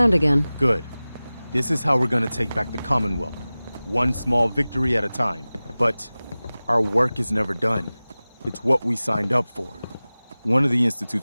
again. Good. This is how we're gonna take back the Commonwealth. One small victory at a time. But our work is never done. It's what we signed up for. One of the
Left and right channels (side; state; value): both; inverted; correlation -0.98